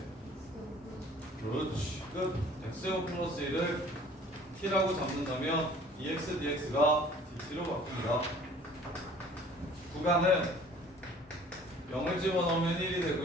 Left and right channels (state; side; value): normal; both; correlation 0.51